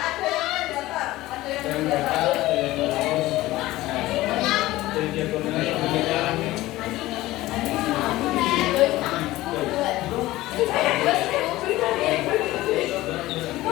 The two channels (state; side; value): quieter; right; 17.3 dB